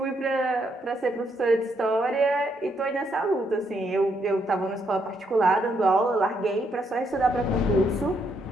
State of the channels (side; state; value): both; normal; correlation 0.75